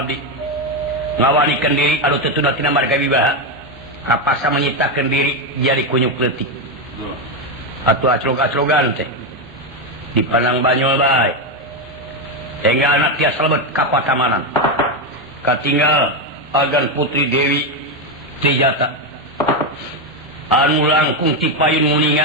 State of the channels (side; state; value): both; normal; correlation 0.08